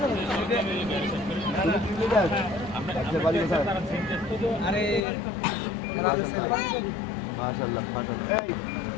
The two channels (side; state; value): right; drops out; at 5.0 s